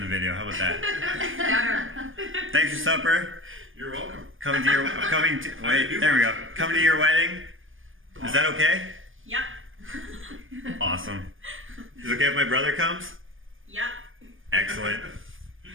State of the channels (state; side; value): late; left; 0.59 ms